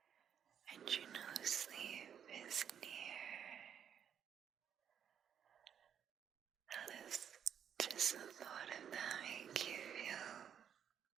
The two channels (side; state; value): left; quieter; 8.5 dB